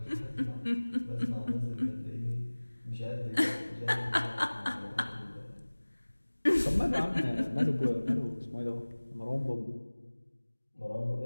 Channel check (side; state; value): both; inverted; correlation -1.00